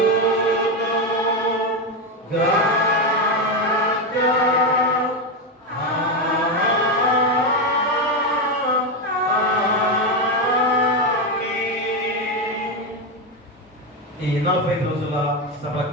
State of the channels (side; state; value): both; normal; correlation 0.10